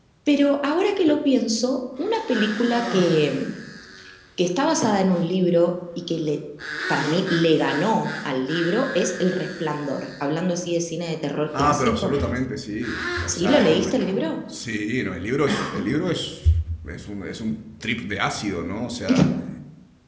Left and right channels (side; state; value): both; identical; correlation 1.00